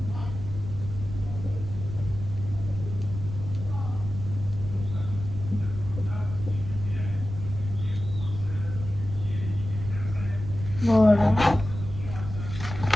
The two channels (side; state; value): right; noise; rumble, 8 dB below the sound